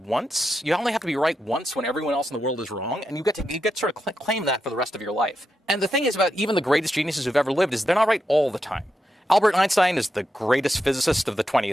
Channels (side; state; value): both; normal; correlation 0.86